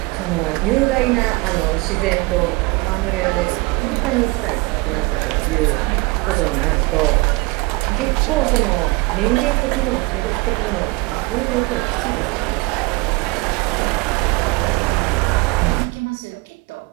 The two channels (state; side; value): quieter; left; 24.7 dB